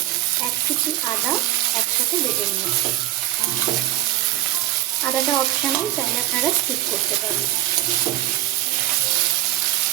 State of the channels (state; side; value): quieter; left; 14.6 dB